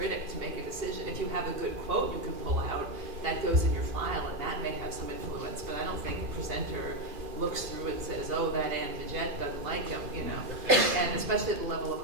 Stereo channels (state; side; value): late; left; 2.4 ms